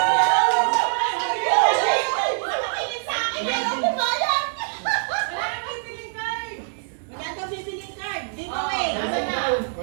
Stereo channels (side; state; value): left; silent; 63 dB below the other